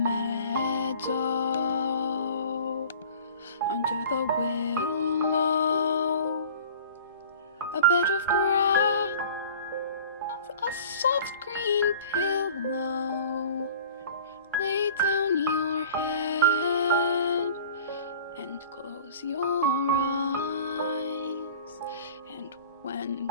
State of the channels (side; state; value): both; inverted; correlation -0.43